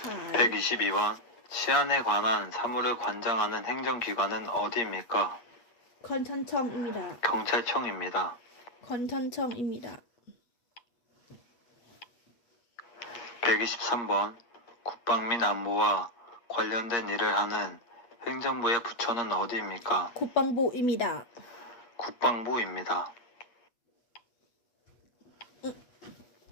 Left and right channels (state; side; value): late; right; 8.5 ms